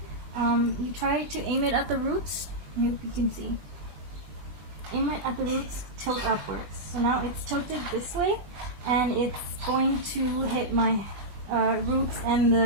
you try to aim it at the roots. I hope you can see. Aim it at the roots, tilt upwards. So now it's tilted this way, and it's going to hit my roots and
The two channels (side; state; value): left; late; 20 ms